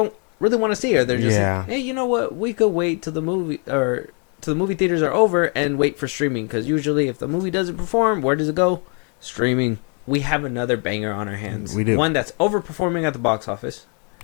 really want to see. Or they're just like, hey, you know what? We could wait till the movie theaters are over and wait for streaming. Because usually if the movie doesn't perform, where does it go? Streaming. We have another banger on our hands. We do. One that's overperforming at the box office.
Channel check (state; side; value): quieter; right; 38.2 dB